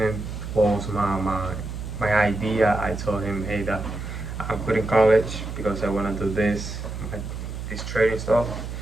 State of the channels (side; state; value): right; noise; hum, 7 dB below the sound